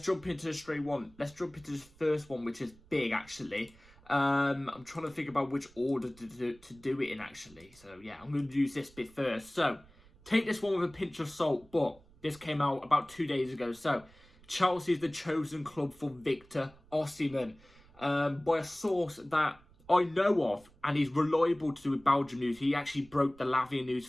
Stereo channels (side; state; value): right; noise; rumble, 26 dB below the sound